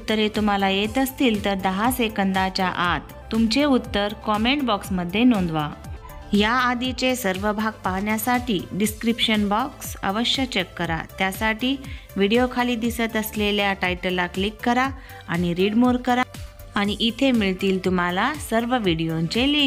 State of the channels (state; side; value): identical; both; correlation 1.00